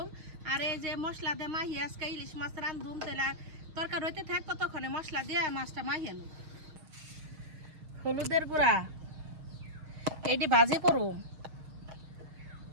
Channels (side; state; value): left; late; 6.4 ms